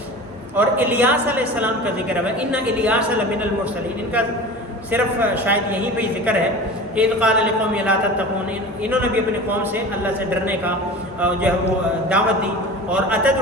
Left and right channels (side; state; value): both; normal; correlation 0.35